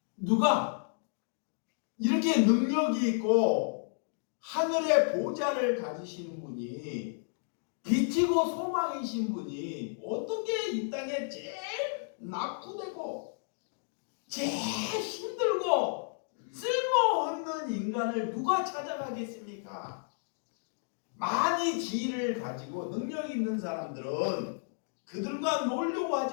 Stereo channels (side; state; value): right; silent; digital silence